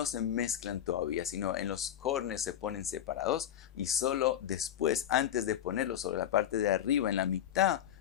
se mezclan todavía, sino en los cornes se ponen separados y solo después, antes de ponerlos sobre la parte de arriba, en la mitad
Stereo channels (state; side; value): quieter; right; 10.6 dB